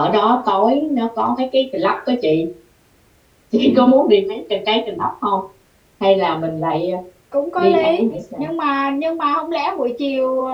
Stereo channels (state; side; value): identical; both; correlation 1.00